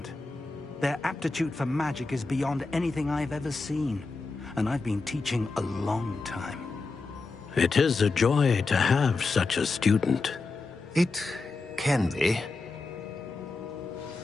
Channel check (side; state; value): right; quieter; 3.8 dB